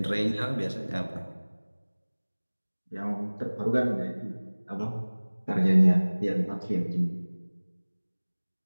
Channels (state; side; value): inverted; both; correlation -1.00